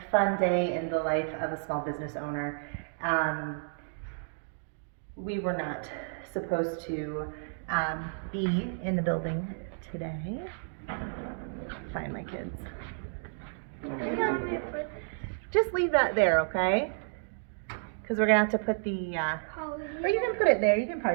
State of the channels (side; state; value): left; silent; digital silence